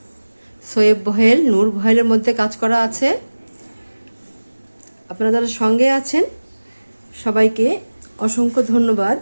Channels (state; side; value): inverted; both; correlation -1.00